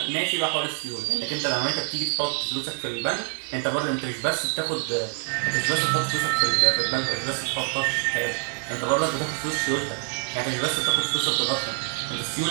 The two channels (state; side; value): quieter; left; 39.2 dB